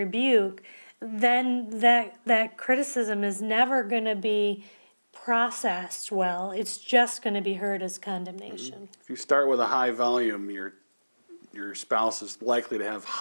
then that criticism is never going to be processed well. It's just going to be heard as condemnation. If you start with a high volume, you're your spouse is likely to have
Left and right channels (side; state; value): both; inverted; correlation -1.00